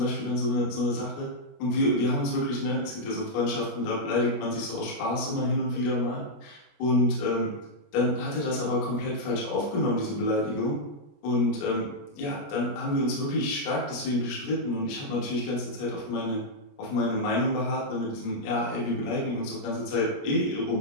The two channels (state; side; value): late; right; 21 ms